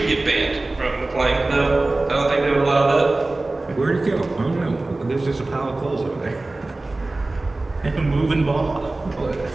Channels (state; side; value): quieter; left; 3.0 dB